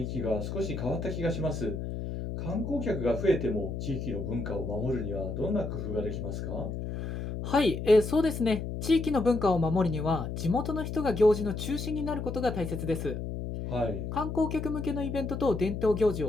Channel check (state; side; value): noise; left; hum, 5 dB below the sound